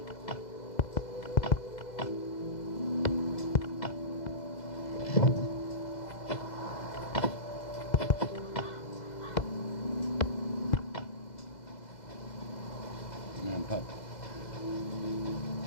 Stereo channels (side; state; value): right; late; 2.0 ms